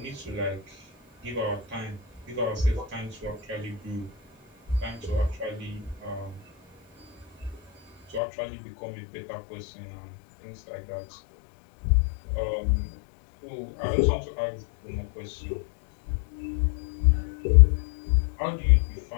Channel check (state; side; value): drops out; right; at 8.2 s